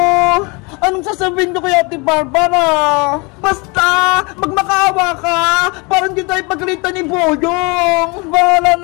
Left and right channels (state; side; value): quieter; right; 28.9 dB